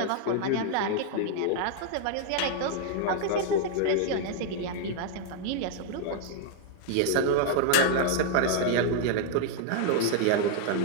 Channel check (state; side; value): different; both; correlation 0.00